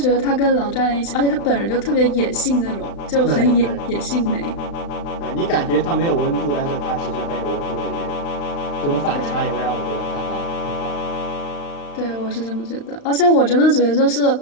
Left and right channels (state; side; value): late; right; 35 ms